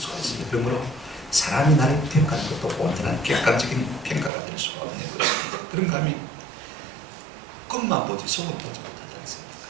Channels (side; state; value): left; drops out; at 4.3 s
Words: 있습니다. 그러므로 사람이 나를 평가하는 것도 온전한 객관적인 평가가 될 수가 없는 것입니다. 그런가 하면 겉만 보지 속은 보지 못하지 않습니까?